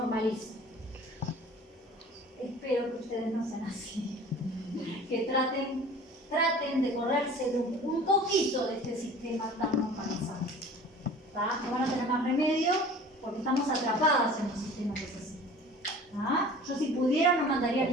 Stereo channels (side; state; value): both; normal; correlation 0.44